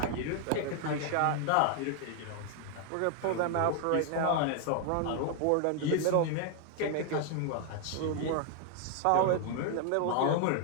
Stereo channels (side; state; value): both; different; correlation 0.00